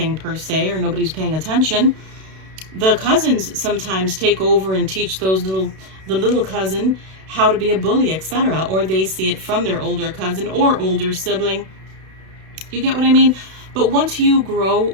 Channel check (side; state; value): left; late; 32 ms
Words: per se, or nobody's paying attention, the cousins sometimes take over and teach the little cousin how to be a bully, etc. Or they see it from their older cousin or older sibling. You get what I mean? But once you grow